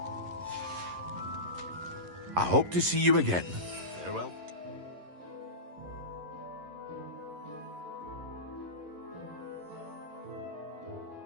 I hope to see you again. Farewell.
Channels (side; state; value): left; late; 11 ms